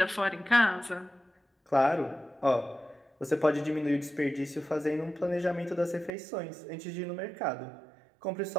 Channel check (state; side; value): drops out; left; at 6.1 s